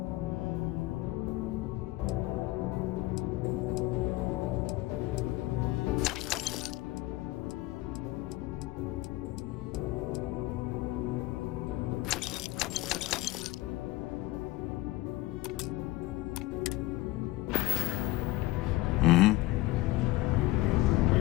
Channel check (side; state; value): right; quieter; 18.7 dB